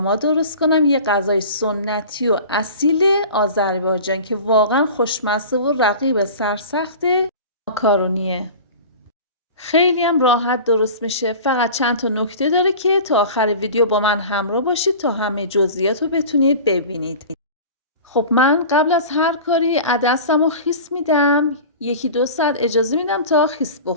درست کنم، یه غذای سنتی و اصیل آذربایجان که واقعا خوشمزه و رقیب سرسخت ماکارونیه. خیلی هم راحت درست میشه، فقط چند تا نکته داره که تا آخر ویدیو با من همراه باشید تا همه جزئیات رو بتونید ببینید. خب من قبل از هر کاری عدسم رو خیس میدم، 1-2 ساعت اجازه میدم تا خیس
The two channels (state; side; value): inverted; both; correlation -0.37